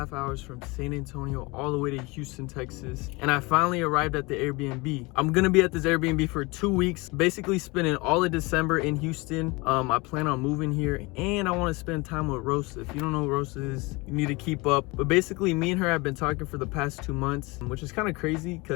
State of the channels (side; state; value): right; quieter; 25.2 dB